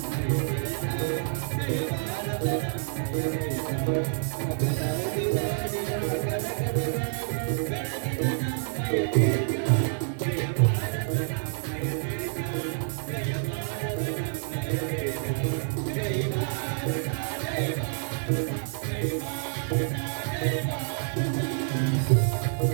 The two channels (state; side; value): silent; left; digital silence